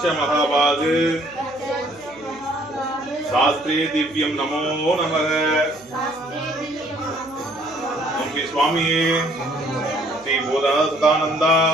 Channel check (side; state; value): right; noise; hum, 25 dB below the sound